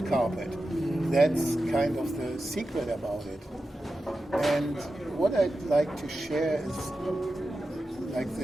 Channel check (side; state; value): both; normal; correlation 0.92